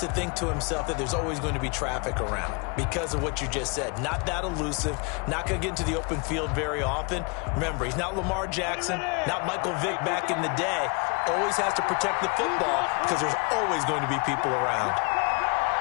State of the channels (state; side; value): quieter; right; 31.6 dB